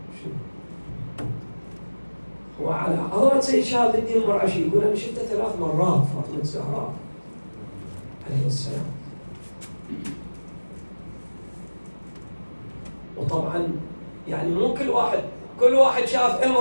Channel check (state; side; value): inverted; both; correlation -1.00